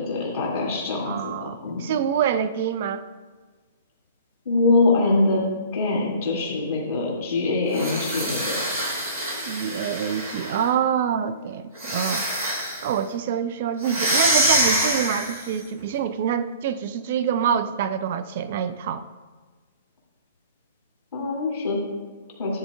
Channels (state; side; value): inverted; both; correlation -0.45